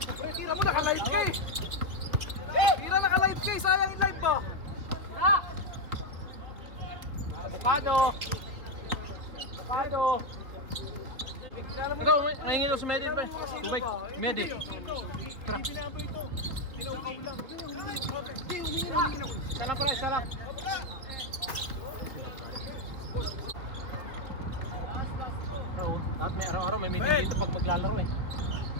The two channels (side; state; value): left; late; 3.3 ms